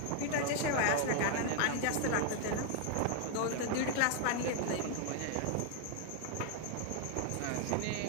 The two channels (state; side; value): different; both; correlation 0.00